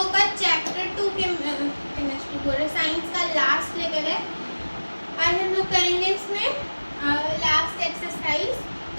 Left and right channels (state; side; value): inverted; both; correlation -1.00